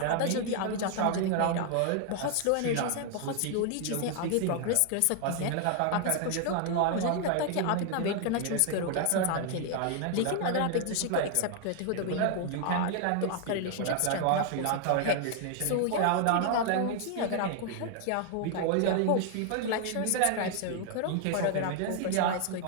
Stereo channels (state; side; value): different; both; correlation 0.00